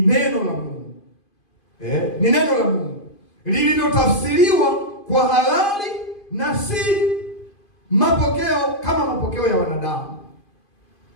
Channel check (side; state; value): right; late; 2.5 ms